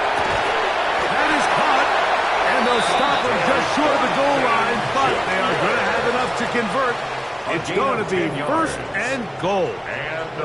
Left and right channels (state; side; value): identical; both; correlation 1.00